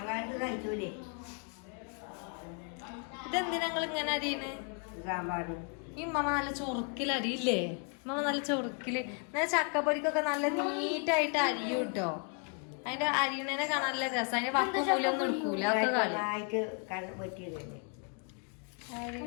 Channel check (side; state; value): right; quieter; 39.7 dB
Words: കഴിച്ചൂലേ ഇതെന്തിനാ നിങ്ങൾ ഇങ്ങനെ അരിയണ് സാമ്പാറിന് ഈ മമ്മ നല്ല ചൊറുക്കിൽ അരിയില്ലേ മമ്മ നല്ല ചൊറുക്കില് എന്നാൽ ചക്കപ്പൊരിക്കൊക്കെ നല്ല നീറ്റായിട്ട് അരിയും കേട്ടോ അതിന്റെ അരിയണേനെ കാണാൻ നല്ല രസം അതിന്റെ വക്കും മൂലൊന്നും എടുക്കൂല ഒക്കെ കളി ആയിട്ട് കണ്ട് പറ്റിയതല്ലേ